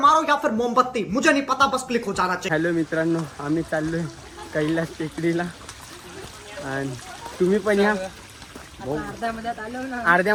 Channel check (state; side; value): identical; both; correlation 1.00